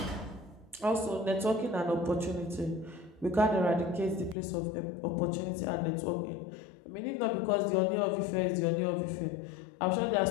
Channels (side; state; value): right; drops out; at 4.4 s